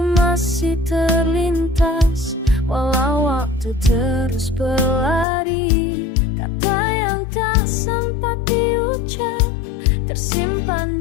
masih terlintas, walau waktu terus berlari. Kata yang tak sempat diucap tersimpan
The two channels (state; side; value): drops out; right; at 5.2 s